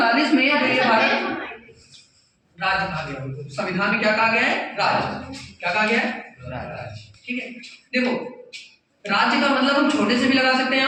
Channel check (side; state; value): both; identical; correlation 1.00